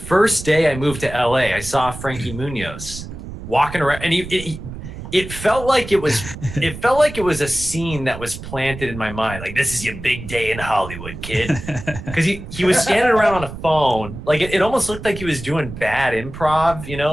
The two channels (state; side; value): noise; right; rumble, 11 dB below the sound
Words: day I moved to LA, I saw Frankie Munoz walking around, and it felt like it was a scene that was planted in my mind. Like, this is your big day in Hollywood, kid. Because he was standing around on a phone. Like it almost looked like he was doing bad improv,